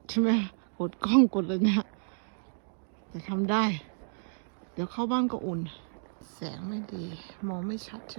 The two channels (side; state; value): left; silent; digital silence